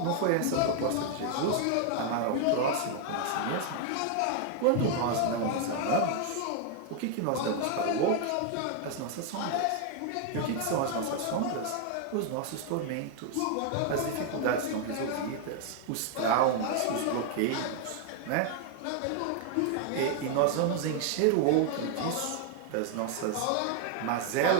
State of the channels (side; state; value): both; different; correlation 0.00